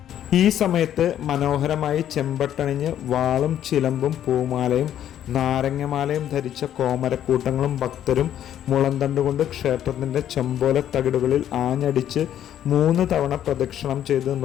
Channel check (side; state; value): right; quieter; 10.8 dB